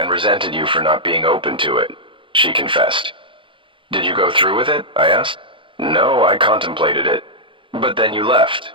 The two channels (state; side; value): late; left; 0.25 ms